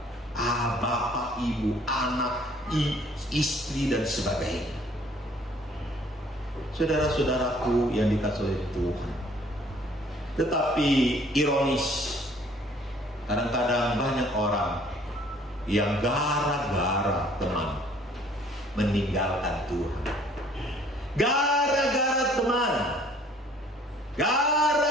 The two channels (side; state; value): both; normal; correlation 0.58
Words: bapak, ibu, anak, istri dan sebagainya. Saudara-saudaraku yang dikasihi oleh Tuhan, tetapi ironis, kadang-kadang banyak orang yang gara-gara teman meninggalkan Tuhan. Gara-gara teman,